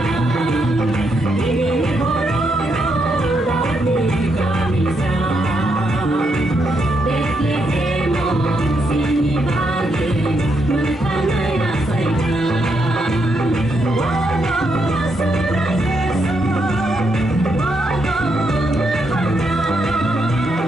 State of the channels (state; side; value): normal; both; correlation 0.79